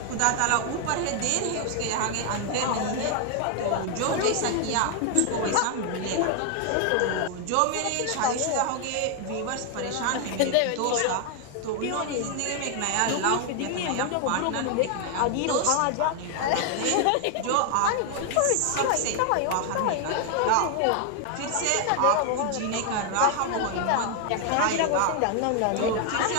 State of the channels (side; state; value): both; different; correlation 0.00